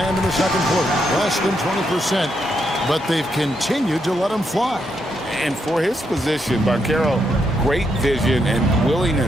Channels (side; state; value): both; normal; correlation 0.79